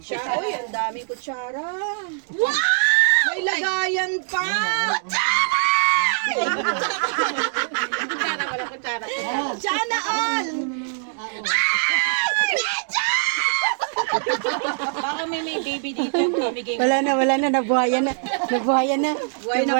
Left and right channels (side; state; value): left; silent; digital silence